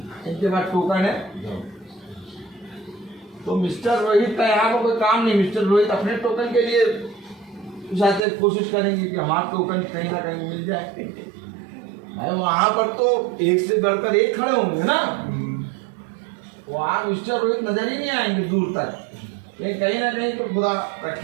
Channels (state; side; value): drops out; left; at 8.2 s